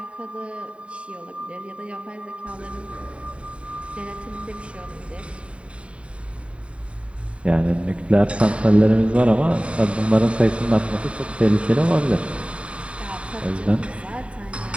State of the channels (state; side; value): late; left; 0.061 ms